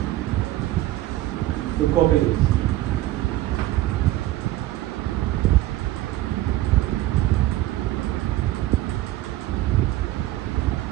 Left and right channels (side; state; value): left; quieter; 15.6 dB